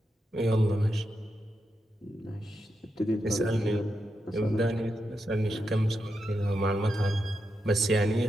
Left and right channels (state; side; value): normal; both; correlation 0.86